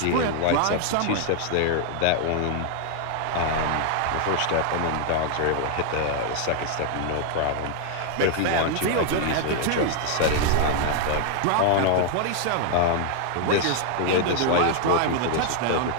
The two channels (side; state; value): both; different; correlation 0.00